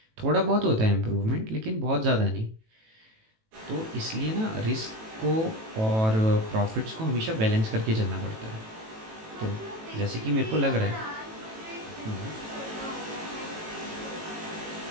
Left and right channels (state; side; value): late; left; 18 ms